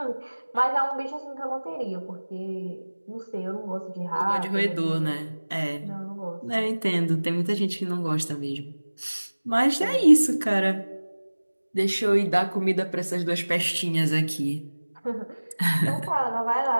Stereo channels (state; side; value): inverted; both; correlation -1.00